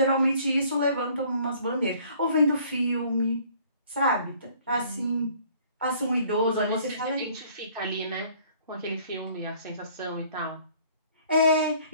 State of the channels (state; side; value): inverted; both; correlation -0.57